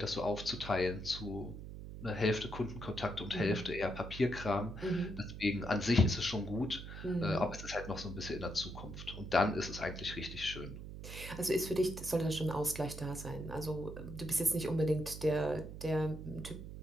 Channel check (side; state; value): right; noise; hum, 10 dB below the sound